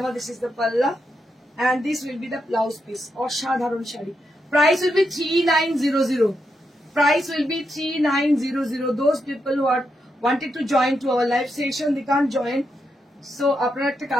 আমার। দিস ইজ দ্য পাল্লা and this will be the blouse piece. অসাধারণ sari. Price will be 3900. Price will be 3900. Those people who are wanted to join to our live session, they can't join. So আপনারা একটা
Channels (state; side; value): normal; both; correlation 0.83